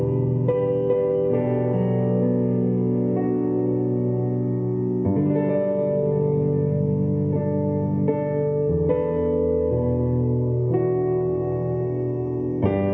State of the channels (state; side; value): identical; both; correlation 1.00